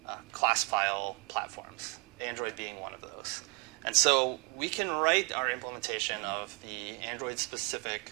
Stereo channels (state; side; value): quieter; left; 29.5 dB